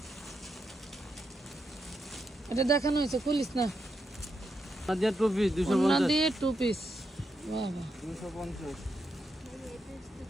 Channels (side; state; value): both; normal; correlation 0.83